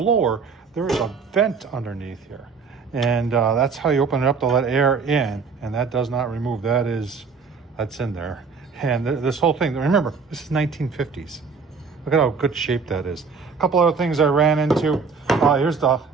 there is a vent underneath here. And that's how you open it up to let air in. And that does not remove, that's in there. And this whole thing, remember, this is 1950s. Look at how good shape that is. A couple other things I ran into. Here's the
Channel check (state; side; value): quieter; left; 5.1 dB